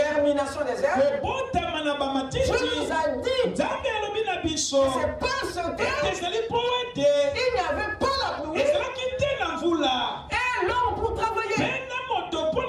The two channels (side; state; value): both; identical; correlation 1.00